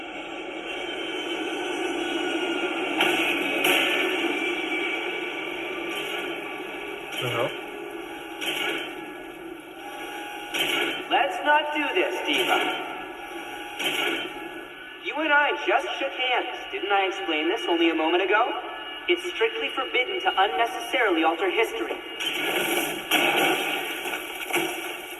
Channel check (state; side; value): identical; both; correlation 1.00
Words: Uh-huh. Let's not do this, Diva. You and I just shook hands. Didn't I explain this only a moment ago? It's strictly forbidden to unnecessarily alter history.